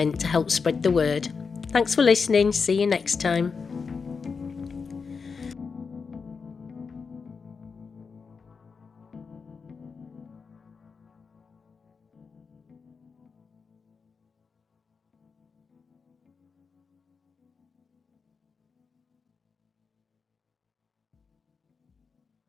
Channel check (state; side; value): quieter; right; 5.2 dB